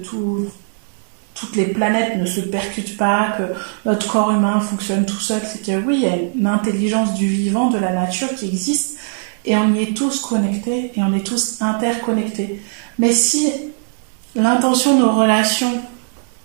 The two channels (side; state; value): left; silent; digital silence